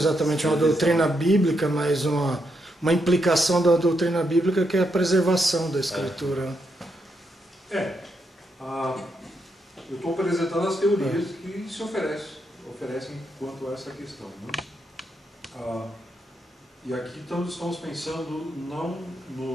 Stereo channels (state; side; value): normal; both; correlation 0.80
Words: uma doutrina bíblica, mas uma implicação da doutrina bíblica, que é a preservação da escritura. Eu estou apresentando as teorias que se oferecem quanto a essa questão. Né? E aqui estamos pensando não